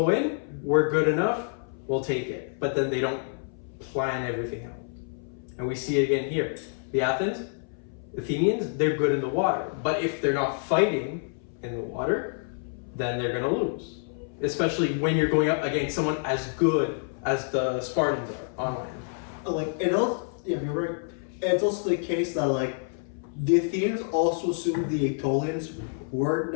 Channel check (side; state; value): right; silent; 60 dB below the other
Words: in, we're good enough, we'll take it. But then they don't plan everything out. And we see it again here. The Athenians, they're good in the water. But if they're not fighting in the water, then they're going to lose. Especially when you're going up against someone as good as the Spartans are on land. You're right. It's also the case that the Athenians also assumed the Aetolians weren't